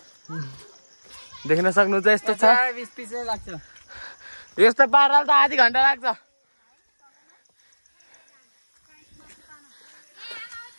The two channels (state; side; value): inverted; both; correlation -1.00